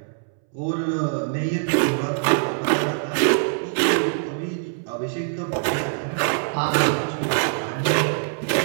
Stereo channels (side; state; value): left; silent; 63 dB below the other